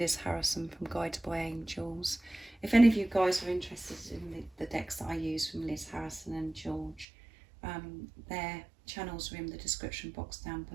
Harrison from Guided by Angels. If any of you guys are interested in the decks that I use from Liz Harrison and George, their channels are in the description box down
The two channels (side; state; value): left; drops out; at 7.1 s